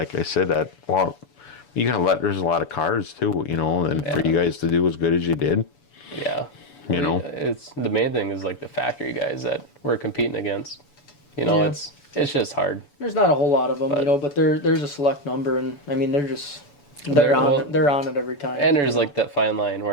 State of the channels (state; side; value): late; right; 7.0 ms